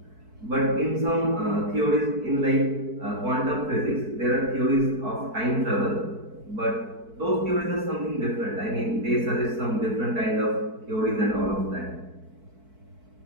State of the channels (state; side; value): late; left; 4.6 ms